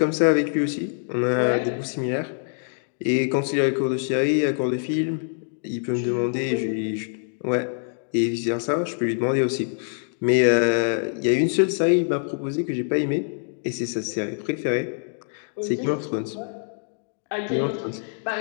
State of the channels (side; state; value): right; silent; 62 dB below the other